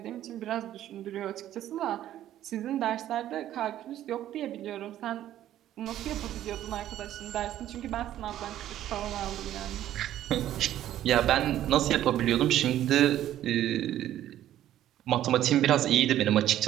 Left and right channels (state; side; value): quieter; left; 12.4 dB